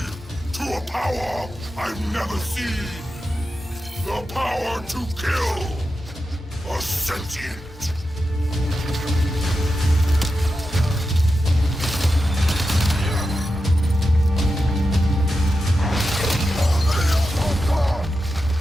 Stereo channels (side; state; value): both; normal; correlation 0.90